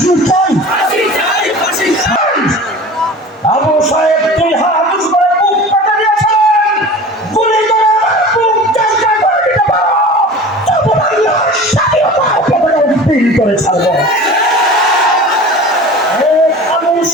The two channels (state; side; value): normal; both; correlation 0.38